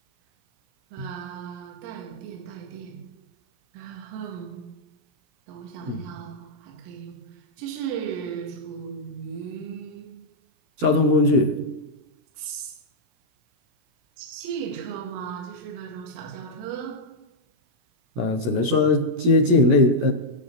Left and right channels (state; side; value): late; left; 17 ms